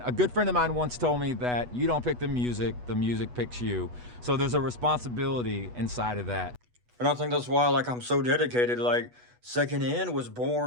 a good friend of mine once told me that you don't pick the music picks you. So there's a responsibility inside of that. And I think that's why, like, I'm so dedicated. Like, Second End was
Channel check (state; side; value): late; left; 8.2 ms